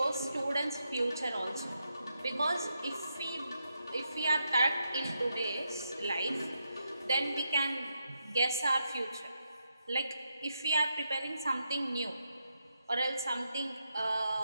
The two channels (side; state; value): both; inverted; correlation -0.84